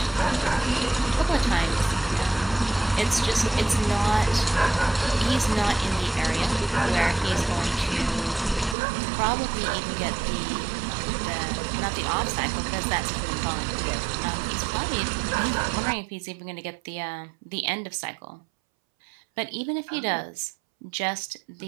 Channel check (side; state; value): left; drops out; at 8.8 s